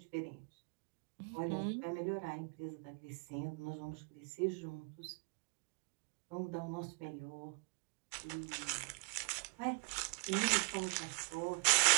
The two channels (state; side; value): quieter; left; 33.4 dB